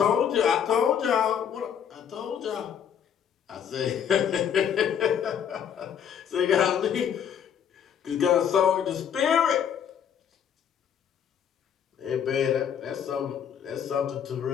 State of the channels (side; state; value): right; quieter; 8.4 dB